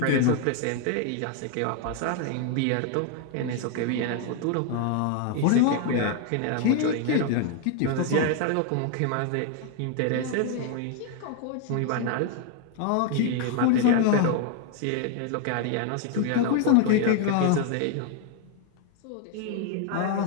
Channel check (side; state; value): both; different; correlation 0.00